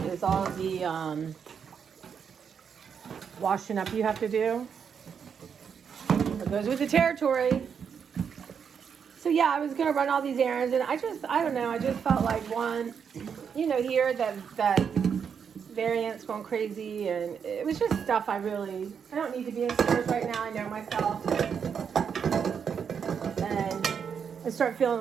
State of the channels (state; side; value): quieter; left; 7.0 dB